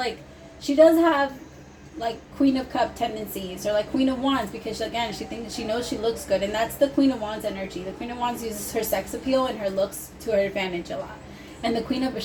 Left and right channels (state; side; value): identical; both; correlation 1.00